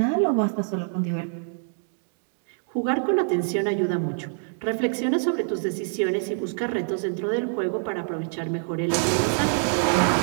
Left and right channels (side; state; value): left; silent; digital silence